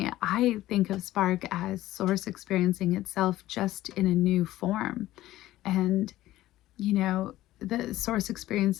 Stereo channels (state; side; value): quieter; right; 15.3 dB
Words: I think of Spark as Source experiencing itself just in a new form. And, the Source